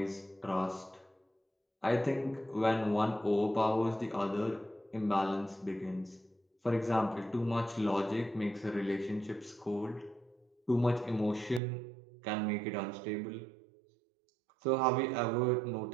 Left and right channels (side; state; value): left; drops out; at 11.6 s